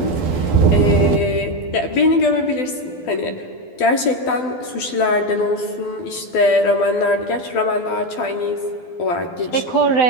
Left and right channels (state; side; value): late; right; 12 ms